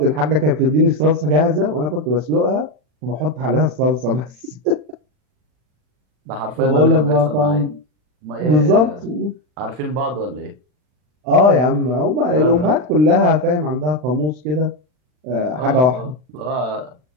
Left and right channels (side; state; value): left; late; 40 ms